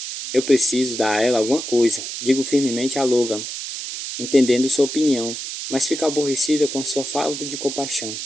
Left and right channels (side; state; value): right; noise; hiss, 7 dB below the sound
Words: Digo firmemente a Logan, entendendo sua opinião, mas fica aborrecida com a sua falta de compaixão.